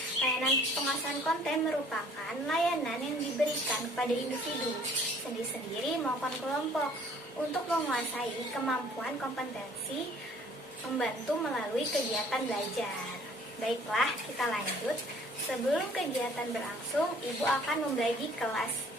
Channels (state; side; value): normal; both; correlation 0.56